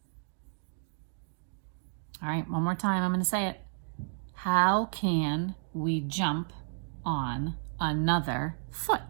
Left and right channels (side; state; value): left; silent; digital silence